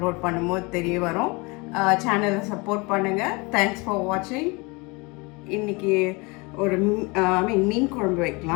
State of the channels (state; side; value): quieter; right; 27.3 dB